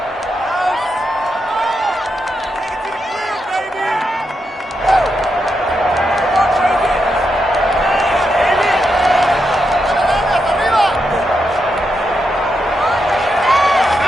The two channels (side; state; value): both; normal; correlation 0.84